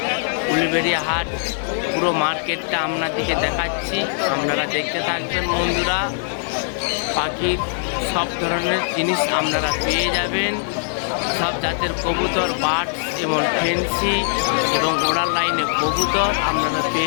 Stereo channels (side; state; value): right; silent; digital silence